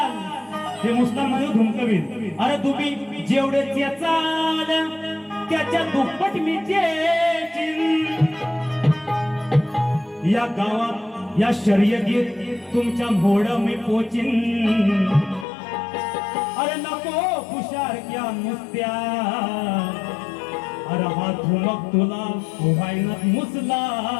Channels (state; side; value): drops out; right; at 15.5 s